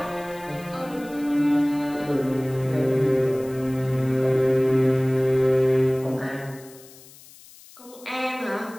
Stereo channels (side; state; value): left; noise; hiss, 22 dB below the sound